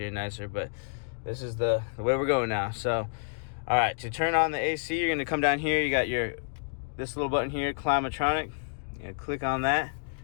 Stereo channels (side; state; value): right; silent; digital silence